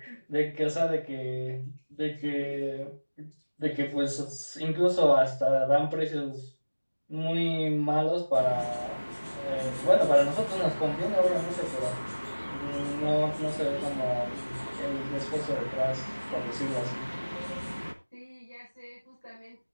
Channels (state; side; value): inverted; both; correlation -1.00